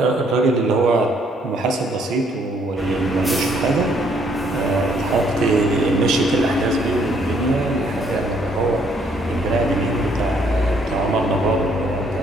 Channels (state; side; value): normal; both; correlation 0.67